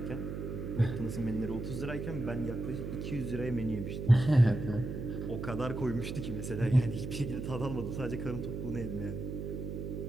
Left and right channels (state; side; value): noise; right; hum, 5 dB below the sound